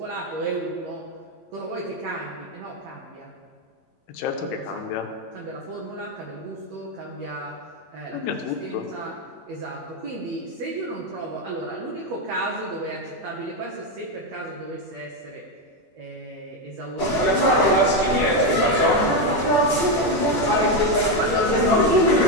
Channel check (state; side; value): normal; both; correlation 0.08